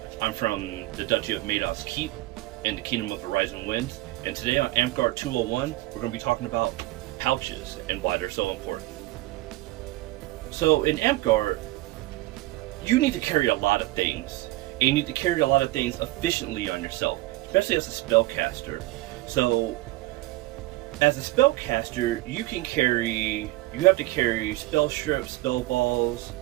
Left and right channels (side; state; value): left; quieter; 18.5 dB